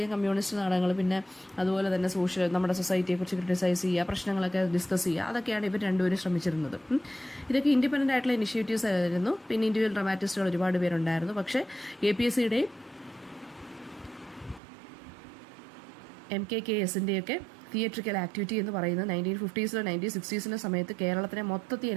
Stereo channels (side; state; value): left; drops out; at 14.6 s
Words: കമ്മ്യൂണിസ്റ്റ് നാടകങ്ങൾ, പിന്നെ അതുപോലെ തന്നെ നമ്മുടെ സൊസൈറ്റിയെക്കുറിച്ച് ക്രിട്ടിസൈസ് ചെയ്യുക, പ്രശ്നങ്ങളൊക്കെ ഡിസ്കസ് ചെയ്യുക, അതൊക്കെയാണ് ഇവർ രണ്ടുപേരും ശ്രമിച്ചിരുന്നത്. ഇതൊക്കെ ഇൻഡിപെൻഡൻ്റ് ആയിട്ടുള്ള ഇനിഷ്യേറ്റീവ്സ് ആയിരുന്നു. പിന്നെ ഇൻഡിവിജ്വൽ ഡ്രാമാറ്റിസ്റ്റുകൾ ഒരുപാട് പേരുണ്ടായിരുന്നു. പക്ഷേ KPSCയുടെയും MKKSൻ്റെയൊക്കെ തിയേറ്ററിക്കൽ ആക്ടിവിറ്റി എന്ന് പറയുന്നത് 1950s 1960s സമയത്ത് കേരളത്തിനെ മൊത്തത്തിൽ